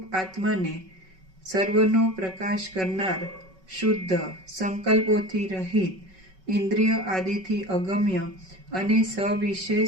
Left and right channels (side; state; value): left; late; 5.3 ms